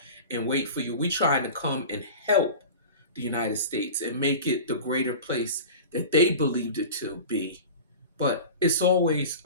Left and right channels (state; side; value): inverted; both; correlation -0.34